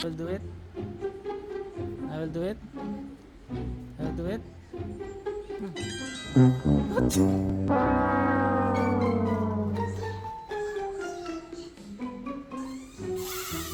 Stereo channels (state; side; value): identical; both; correlation 1.00